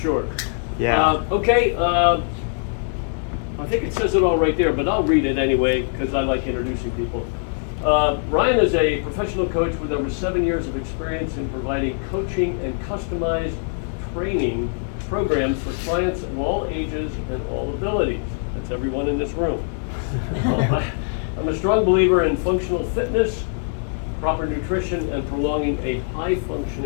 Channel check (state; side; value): silent; right; digital silence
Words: sure. Yeah. Okay, I think it says it all right there, but I'll read it anyway because I like introducing people. Ryan is a professional coach with over 7 years of experience in providing coaching and customized training programs for clients of all ages and all abilities. That's everyone in this room. I'm a strong believer in functional fitness, proper nutrition, and prolonging a